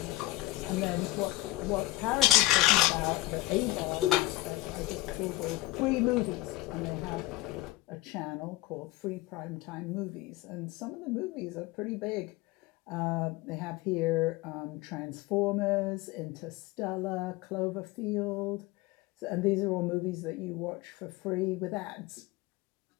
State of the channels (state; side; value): quieter; right; 18.6 dB